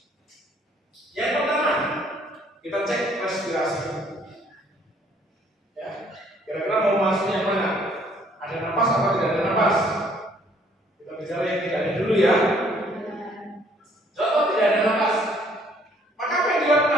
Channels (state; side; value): normal; both; correlation 0.62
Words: Yang pertama, kita cek respirasi. Ya, kira-kira mau masuk yang mana? Ada napas atau tidak ada napas? Kita bicara yang tidak ada dulu ya. Contoh tidak ada napas. Maka apa yang